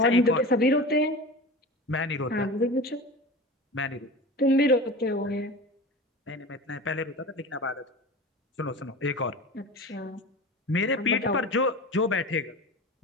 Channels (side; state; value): both; normal; correlation 0.32